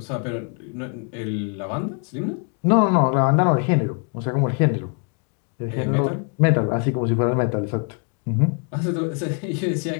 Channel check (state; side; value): quieter; right; 38.1 dB